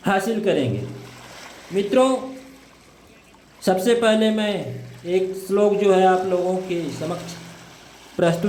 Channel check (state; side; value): identical; both; correlation 1.00